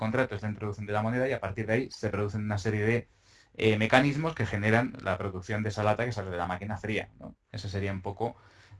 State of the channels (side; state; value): both; identical; correlation 1.00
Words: es la introducción de la moneda, y a partir de ahí se producen una serie de mecanismos que generan la producción de esa lata que sale de la máquina fría, ¿no? Ese sería un poco